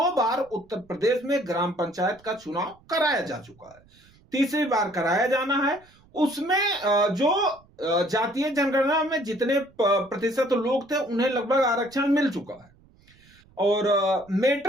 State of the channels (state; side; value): noise; right; rumble, 29 dB below the sound